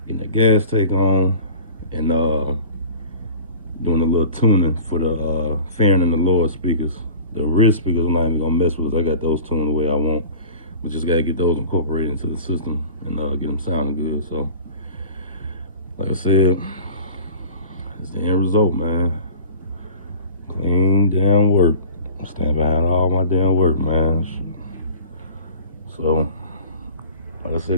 getting the gas tank on, and doing a little tuning for the fairing and the lower speakers. The rear speakers I'm not even gonna mess with. I got those tuned the way I want. But just gotta get those incorporated into the system and get them sounding good. So, like I said, it's the end result, man. Clean damn work. I stand behind all my damn work, man. So, like I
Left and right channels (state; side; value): inverted; both; correlation -0.41